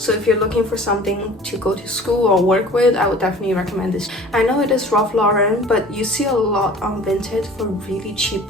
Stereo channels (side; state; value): both; normal; correlation 0.46